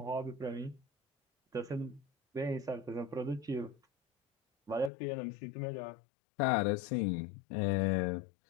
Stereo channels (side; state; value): right; drops out; at 4.9 s